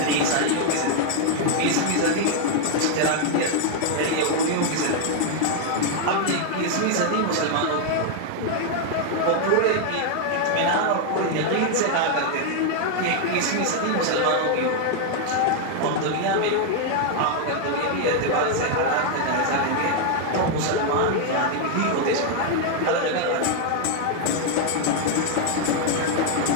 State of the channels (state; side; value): different; both; correlation 0.00